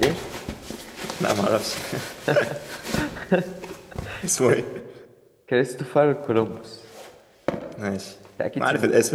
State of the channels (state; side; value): identical; both; correlation 1.00